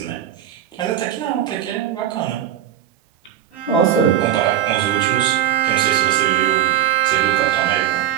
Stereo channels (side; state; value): left; quieter; 10.6 dB